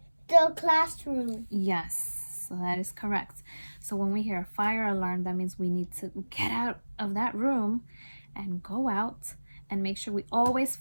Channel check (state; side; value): inverted; both; correlation -1.00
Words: the classroom. Yes, so that is correct. So when we hear a fire alarm, that means we need to get out of that room and go out and make sure we always